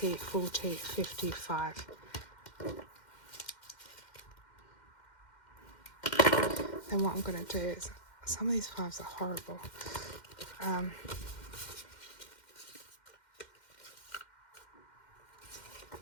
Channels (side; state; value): right; late; 2.1 ms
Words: 40, 55. Then what I'm going to do is, some of these 5s are horrible.